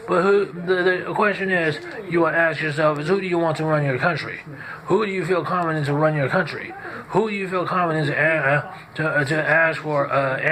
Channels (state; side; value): identical; both; correlation 1.00